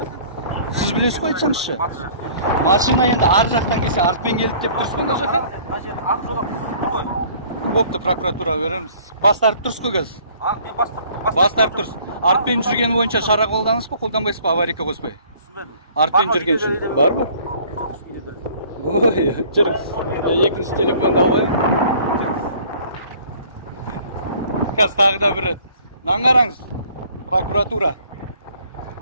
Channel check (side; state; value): both; inverted; correlation -0.54